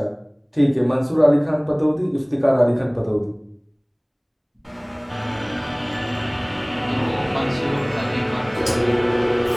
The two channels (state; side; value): identical; both; correlation 1.00